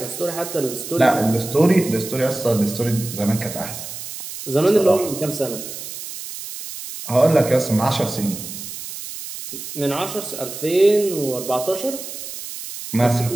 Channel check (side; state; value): right; noise; hiss, 10 dB below the sound